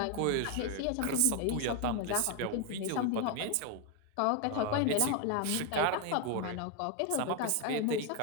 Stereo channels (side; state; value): both; different; correlation 0.01